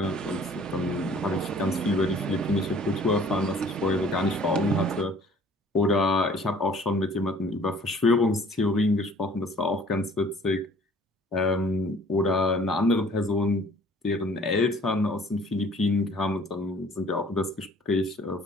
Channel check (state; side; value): normal; both; correlation 0.53